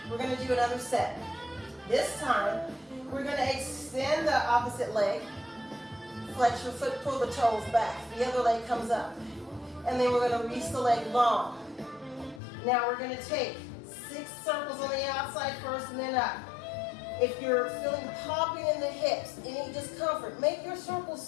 We're going to do another set. This time, we're going to extend the opposite leg. Flex your foot, pull the toes back. The other leg comes up. And then we're going to reach the leg long. Now we're going to take 6 circles on the outside first and then up. If you're feeling popping in the hips, any discomfort, make your circles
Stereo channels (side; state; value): right; drops out; at 12.4 s